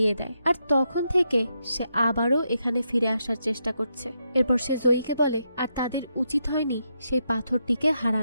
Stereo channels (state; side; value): inverted; both; correlation -0.82